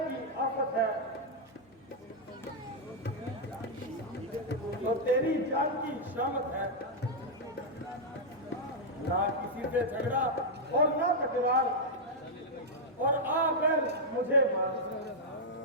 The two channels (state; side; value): normal; both; correlation -0.05